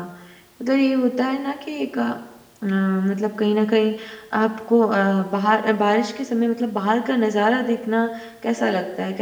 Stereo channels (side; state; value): both; identical; correlation 1.00